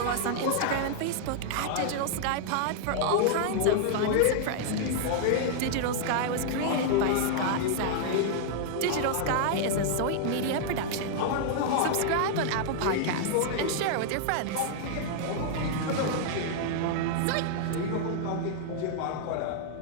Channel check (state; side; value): different; both; correlation -0.01